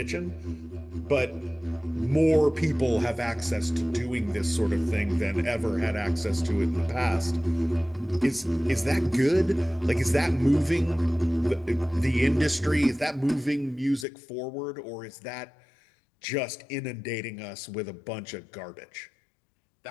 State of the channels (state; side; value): drops out; right; at 14.1 s